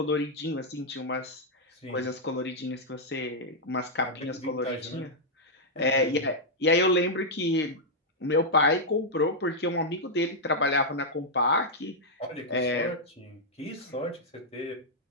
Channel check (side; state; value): both; normal; correlation -0.05